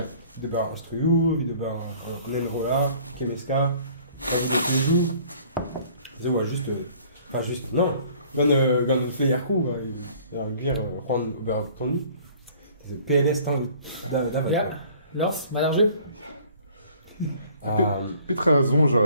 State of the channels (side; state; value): both; inverted; correlation -0.53